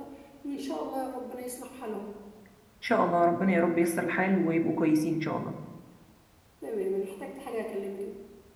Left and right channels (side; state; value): both; identical; correlation 1.00